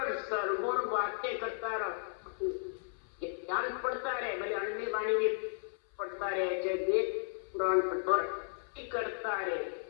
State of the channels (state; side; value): silent; right; 55 dB below the other